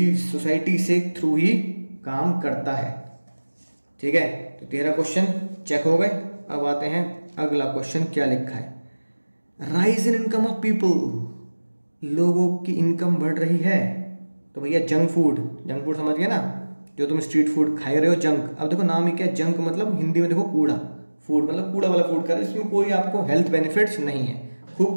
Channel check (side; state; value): both; inverted; correlation -1.00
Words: सोसाइटी से थ्रू ही काम करता है, ठीक है। तो 13 क्वेश्चन चेक हो गए। अब आते हैं अगला क्वेश्चन, क्या लिखा है, rise in income of people. लोगों की इनकम बढ़ रही है, तो भैया जंक फूड समझ गए ना, जो तुम स्ट्रीट फूड खा रहे हो जंक। अब देखो नाम ही क्या है, जंक मतलब हिंदी में देखो कूड़ा, फूड मतलब कूड़ा वाला फूड खा रहे हो, इसमें कोई आपको हेल्थ बेनिफिट्स नहीं है।